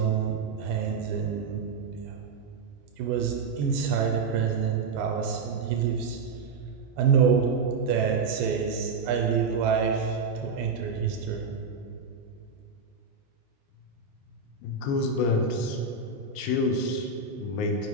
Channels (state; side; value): quieter; left; 4.5 dB